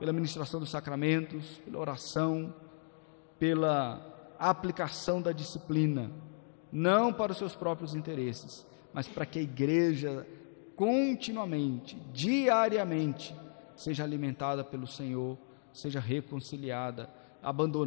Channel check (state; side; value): silent; right; digital silence